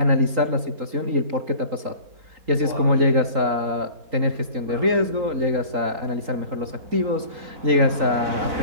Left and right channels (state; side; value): late; left; 3.8 ms